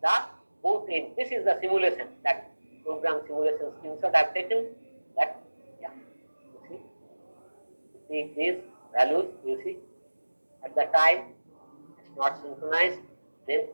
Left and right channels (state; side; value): inverted; both; correlation -1.00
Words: the both ends. This is the simulation, that program simulation screenshot I have taken. That, yeah, you see these values, you see at the time it's not synchronized, then